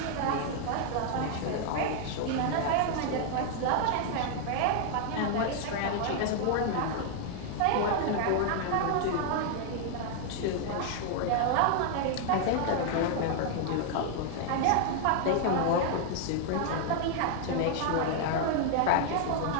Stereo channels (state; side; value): different; both; correlation 0.00